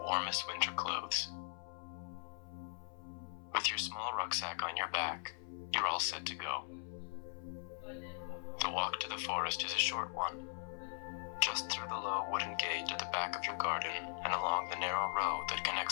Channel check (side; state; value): right; silent; 51 dB below the other